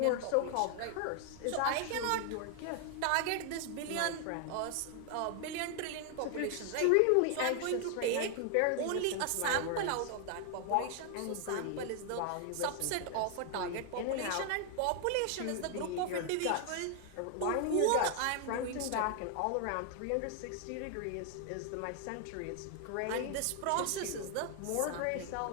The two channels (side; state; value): both; different; correlation 0.00